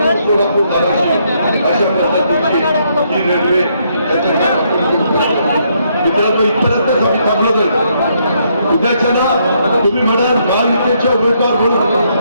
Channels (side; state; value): both; inverted; correlation -0.73